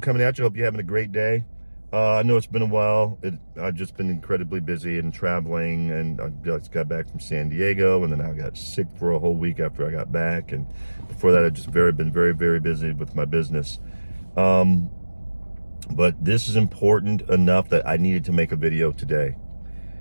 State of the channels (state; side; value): inverted; both; correlation -1.00